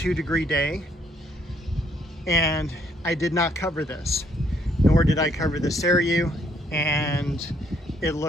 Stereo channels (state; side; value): normal; both; correlation 0.68